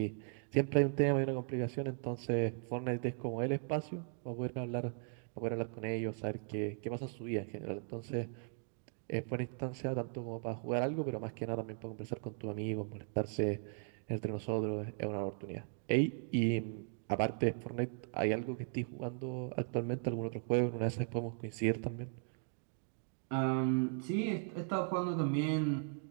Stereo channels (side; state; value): left; silent; 53 dB below the other